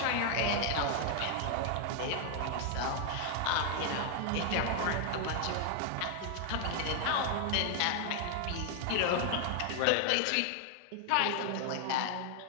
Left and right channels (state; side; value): different; both; correlation 0.00